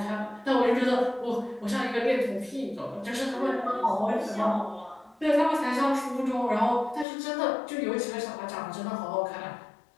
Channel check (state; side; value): drops out; right; at 7.1 s